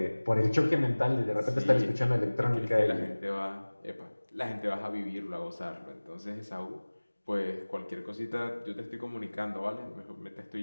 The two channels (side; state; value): both; inverted; correlation -1.00